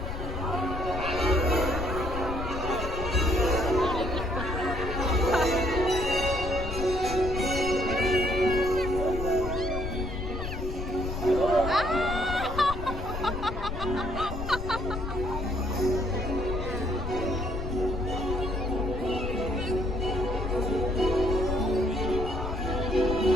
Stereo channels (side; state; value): left; noise; rumble, 6 dB below the sound